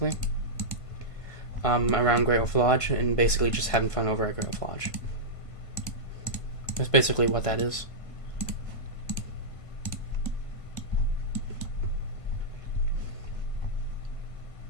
around Great Wolf Lodge, and basically just having fun over at Great Wolf Lodge. That's basically what that is.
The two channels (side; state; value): right; late; 1.5 ms